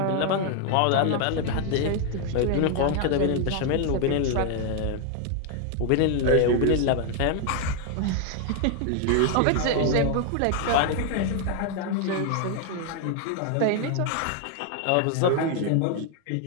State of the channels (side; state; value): both; different; correlation 0.00